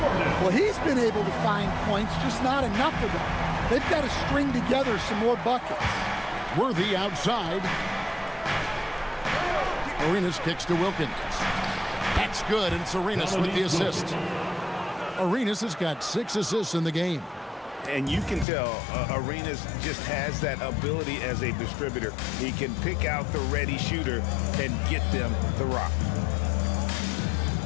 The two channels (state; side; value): drops out; right; at 18.4 s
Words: Well, he's been able to find points, just not enough of them. They've got to string together some more buckets. Worthy outside. Arenas kicks to Wilkins. That's good, and it's Arenas with the assist. Arenas has got 6 assists in the game. And you can tell Arenas just has that ability as a distributor. He can pick out the ready shooter and get them the rock.